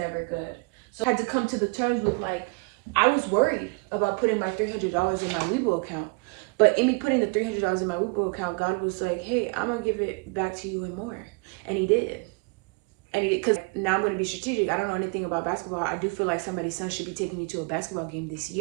good. So I had to come to the terms with like, I was worried about putting my $300 in my Webull account. But in me putting the $300 in my Webull account, God was like, hey, I'm going to give it back to you and more. And he did. Because now I'm going to be strategic. I don't know anything about basketball. I do feel like somebody's son should be taking me to a basketball game this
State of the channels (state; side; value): quieter; left; 31.1 dB